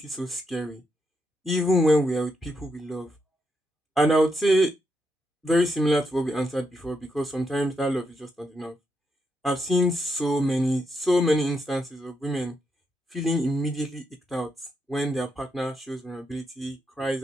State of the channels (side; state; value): both; normal; correlation 0.81